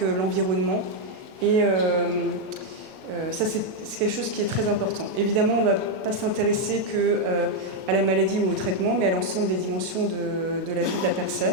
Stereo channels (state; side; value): late; left; 37 ms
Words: l'environnement. Et ça, c'est quelque chose qui est très important. Évidemment, on ne va pas s'intéresser qu'à la maladie ou au traitement, mais à l'ensemble des dimensions de la vie de la